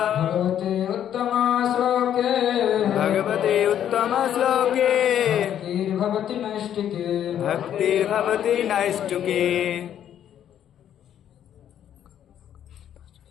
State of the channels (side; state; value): right; quieter; 10.2 dB